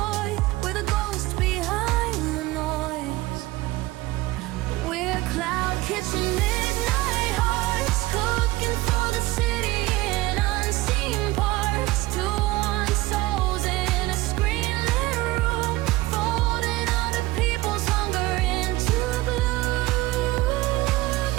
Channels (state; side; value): quieter; left; 19.0 dB